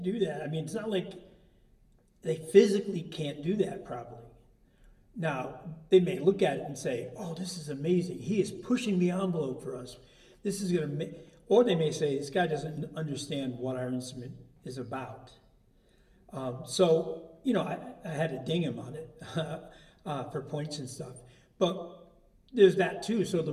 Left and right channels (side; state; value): both; identical; correlation 1.00